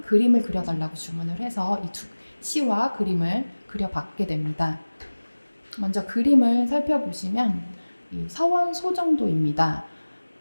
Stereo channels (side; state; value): both; inverted; correlation -1.00